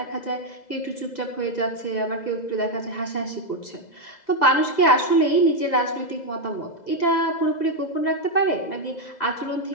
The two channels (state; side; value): late; right; 2.0 ms